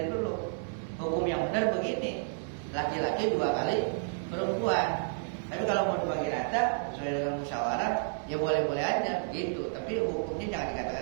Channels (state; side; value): silent; left; 57 dB below the other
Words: dulu. Hukum yang benar begini, laki-laki 2 kali perempuan. Tapi kalau mau dibagi rata sesuai dengan musyawarah, ya boleh-boleh aja begitu. Tapi hukumnya jangan